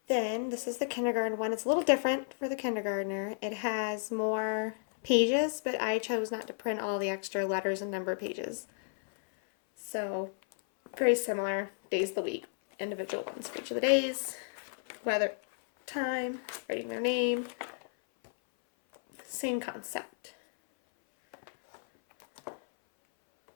Then this is the kindergarten one. It's a little different for the kindergartner. It has more pages, but I chose not to print all the extra letters and number pages. So very similar, days of the week, individual ones for each of the days, weather, time, writing their name, same concept.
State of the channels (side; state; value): right; silent; 56 dB below the other